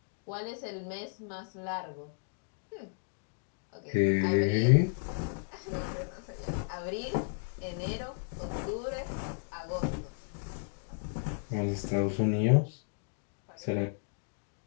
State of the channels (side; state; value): right; silent; digital silence